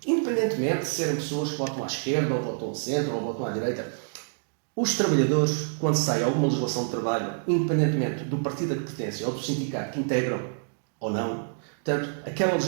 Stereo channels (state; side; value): silent; left; digital silence